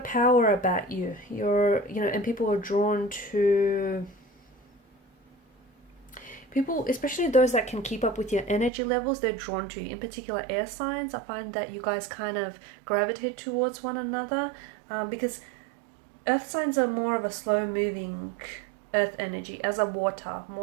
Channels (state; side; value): drops out; left; at 8.7 s